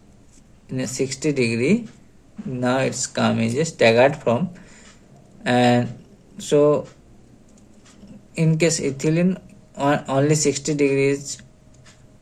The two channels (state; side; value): identical; both; correlation 1.00